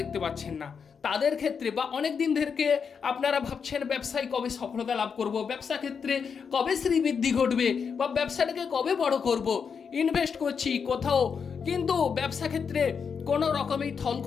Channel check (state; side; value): quieter; right; 6.3 dB